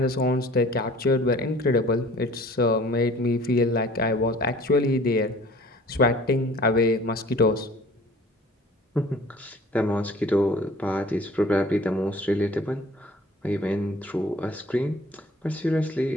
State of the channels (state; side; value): normal; both; correlation 0.49